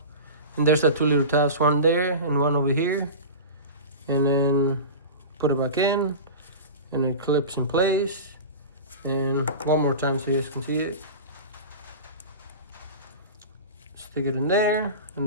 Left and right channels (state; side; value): inverted; both; correlation -0.30